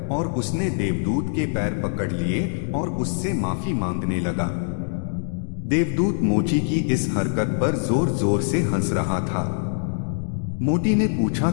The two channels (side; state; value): right; silent; digital silence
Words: और उसने देवदूत के पैर पकड़ लिए और उससे माफी मांगने लगा। देवदूत मोची की इस हरकत पर जोर जोर से हंस रहा था। मोटी ने पूछा,